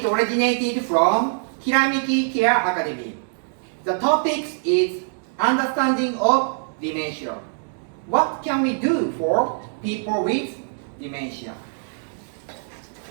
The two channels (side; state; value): left; silent; digital silence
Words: originated from Kiramiki Care Academy. The topic is understanding of dementia. What can we do for people with dementia?